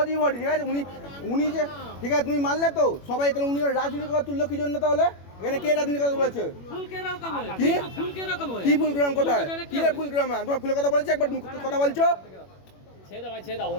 ভরি ঠিক আছে। উনি যে ঠিক আছে তুমি মানলে তো সবাই, তাহলে উনি রাজনীতি কথা তুললো কি জন্য তাহলে? এখানে কে রাজনীতি কথা বলেছে? ফুল কে রকম হয়? কি? ফুল কে রকম হয়? কি ফুলগ্রাম কোথায়? কি রে ফুলগ্রাম? তোমার ফুলের কথা বলেছি একবার, তুমি কথা বলছো? ছেড়ে ভাই ছেড়ে দাও,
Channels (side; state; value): right; late; 21 ms